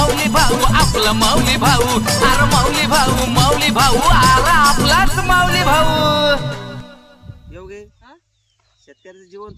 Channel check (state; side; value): identical; both; correlation 1.00